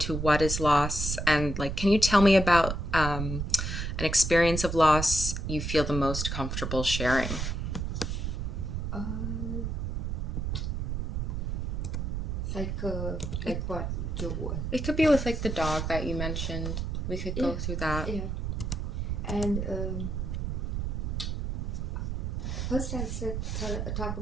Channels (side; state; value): right; noise; rumble, 2 dB below the sound